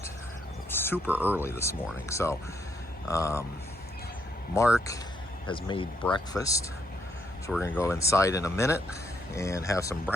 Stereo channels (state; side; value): normal; both; correlation 0.74